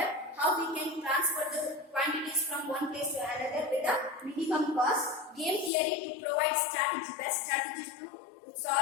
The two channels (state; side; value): drops out; right; at 5.7 s